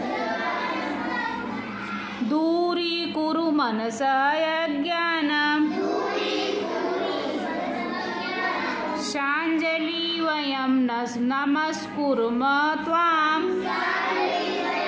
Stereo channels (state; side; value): identical; both; correlation 1.00